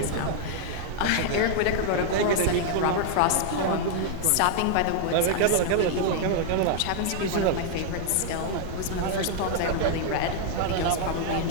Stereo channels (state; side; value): different; both; correlation 0.00